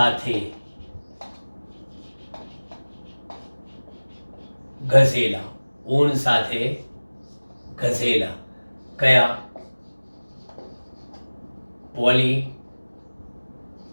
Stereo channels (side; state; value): both; inverted; correlation -1.00